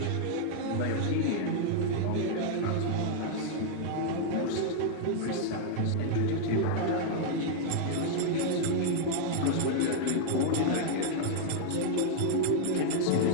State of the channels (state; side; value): different; both; correlation -0.01